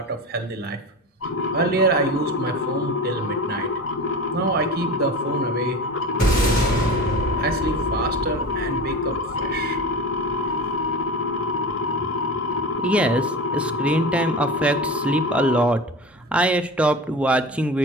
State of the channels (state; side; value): normal; both; correlation 0.30